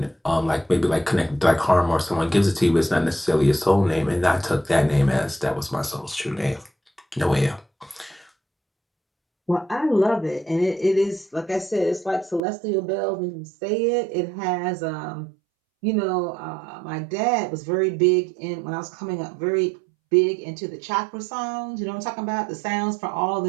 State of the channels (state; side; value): drops out; left; at 12.4 s